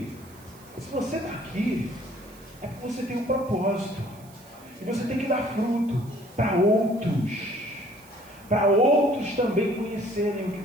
se você está aqui, é porque você tem um propósito. E você tem que dar fruto para outros também conhecerem o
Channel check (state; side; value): noise; right; hiss, 24 dB below the sound